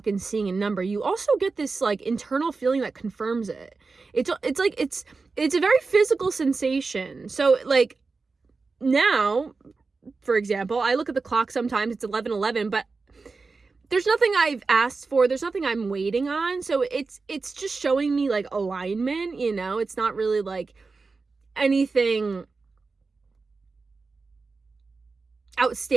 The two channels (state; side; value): quieter; left; 4.2 dB